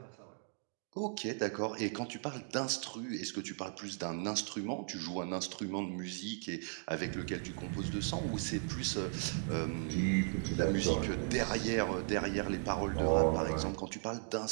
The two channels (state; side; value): silent; left; 53 dB below the other